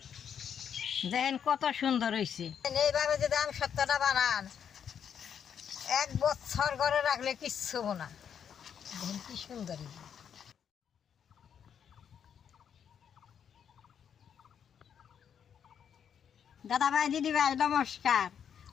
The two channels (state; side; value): quieter; right; 8.1 dB